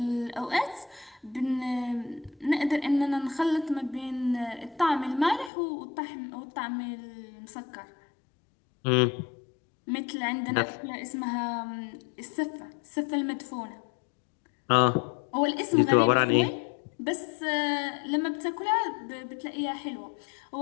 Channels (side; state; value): right; drops out; at 5.5 s